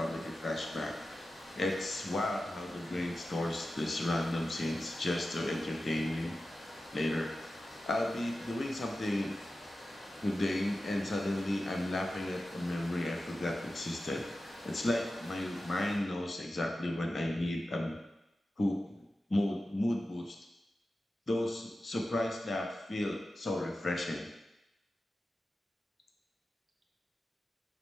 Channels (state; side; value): normal; both; correlation 0.93